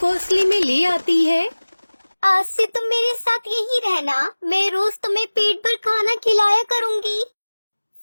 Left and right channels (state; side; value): inverted; both; correlation -1.00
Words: में ले आती है। आज से तुम मेरे साथ यही रहना, मैं रोज तुम्हें पेट भर खाना खिलाया करूँगी।